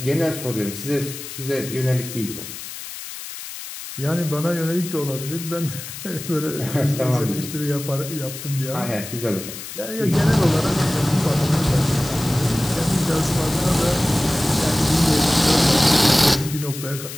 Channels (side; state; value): left; noise; hiss, 11 dB below the sound